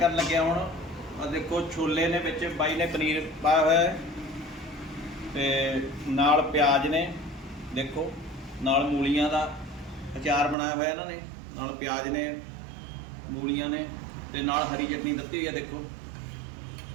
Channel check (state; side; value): drops out; left; at 10.6 s